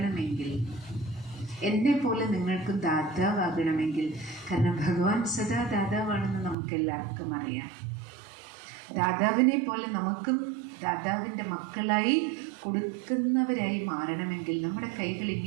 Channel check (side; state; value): left; drops out; at 6.6 s